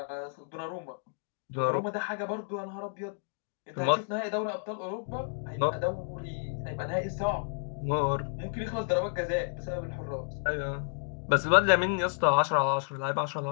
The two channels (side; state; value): right; silent; digital silence